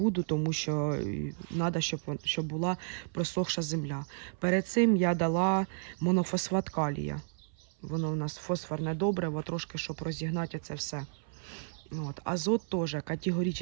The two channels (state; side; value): silent; left; 56 dB below the other